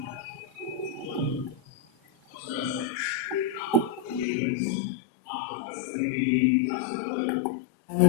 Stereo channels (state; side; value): drops out; right; at 4.2 s